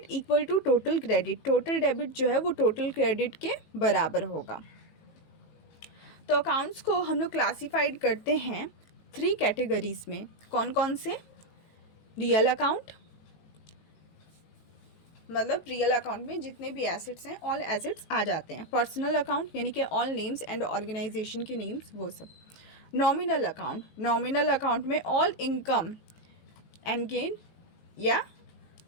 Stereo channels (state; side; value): late; right; 19 ms